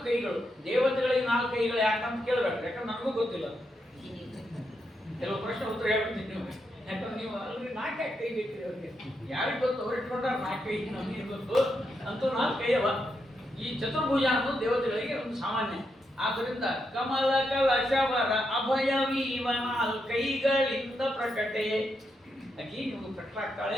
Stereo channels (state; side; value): normal; both; correlation 0.82